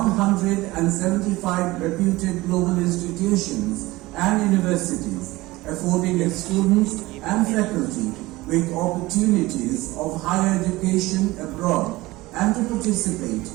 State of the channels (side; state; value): left; quieter; 19.6 dB